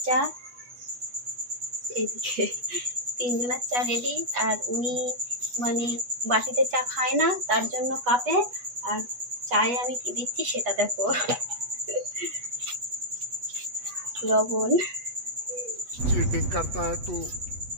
চা, এইদিকে তিনজনের চা রেডি। আর উনি বাটিতে চা খায় না, তার জন্য কাপে। আর চায়ে আমি কি দিচ্ছি সেটা দেখো, লবণ। चीटिंग करता है तू,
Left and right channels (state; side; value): late; left; 8.2 ms